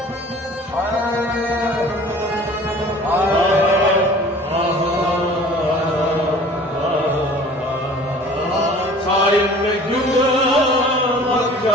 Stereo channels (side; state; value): both; normal; correlation 0.46